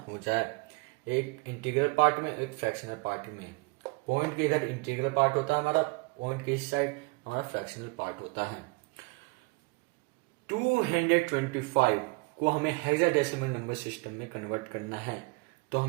हो जाए, एक इंटीग्रल पार्ट में एक फ्रैक्शनल पार्ट में। पॉइंट के इधर इंटीग्रल पार्ट होता है हमारा, पॉइंट के इस साइड हमारा फ्रैक्शनल पार्ट होता है। 225 को हमें हेक्साडेसिमल नंबर सिस्टम में कन्वर्ट करना है तो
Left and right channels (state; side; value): quieter; left; 27.2 dB